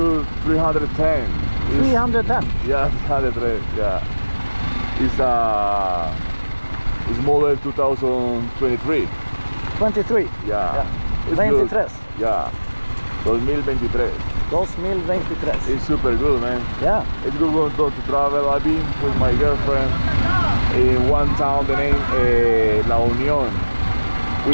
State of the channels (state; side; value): inverted; both; correlation -1.00